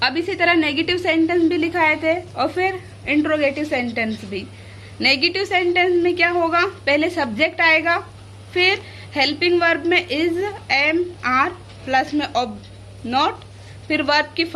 अब इसी तरह नेगेटिव सेंटेंस भी लिखाए थे और फिर इंट्रोगेटिव सेंटेंस भी। नेगेटिव सेंटेंस में क्या होगा? पहले सब्जेक्ट आएगा, फिर हेल्पिंग वर्ब में इज, एम, आर, प्लस में नॉट, फिर वर्ब की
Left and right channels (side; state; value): both; identical; correlation 1.00